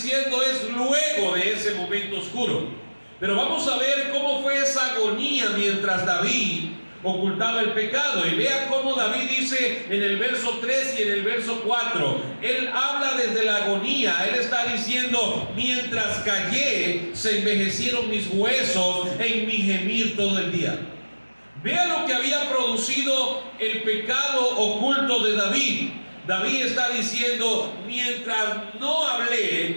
es luego de ese momento oscuro. Pero vamos a ver cómo fue esa agonía mientras David ocultaba el pecado. Y vea cómo David dice en el verso 3 y en el verso 4. Él habla desde la agonía. Él está diciendo: mientras callé, se envejecieron mis huesos en mi gemir todo el día. Vea lo que había producido el pecado oculto de David. David está diciendo: mientras no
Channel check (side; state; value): both; inverted; correlation -1.00